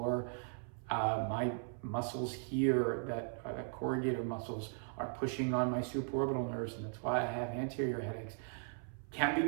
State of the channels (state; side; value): silent; left; 53 dB below the other